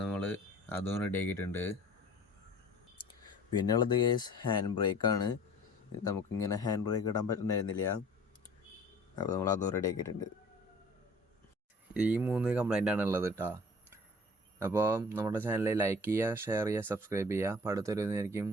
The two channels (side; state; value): both; normal; correlation 0.47